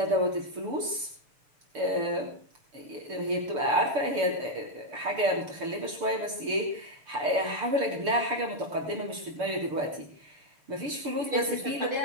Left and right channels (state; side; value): late; left; 6.8 ms